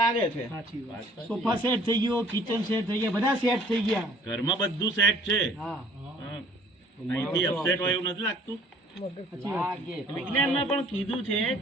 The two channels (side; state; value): both; normal; correlation 0.55